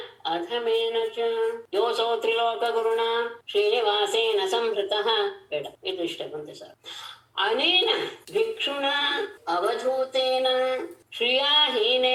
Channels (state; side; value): identical; both; correlation 1.00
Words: ಅಧಮೇನ ಚ ಯೋಸೋ ತ್ರಿಲೋಕ ಗುರುಣ ಶ್ರೀನಿವಾಸೇನ ಸಂಹೃತಃ. ಬೇಡ, ಇದು ಇಷ್ಟ ಬಂತೆ ಸರ್. ಅನೇನ ಭಿಕ್ಷುಣ ಅವಧೂತೇನ